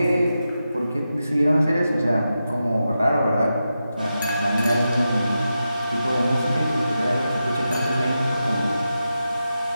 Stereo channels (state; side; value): inverted; both; correlation -0.90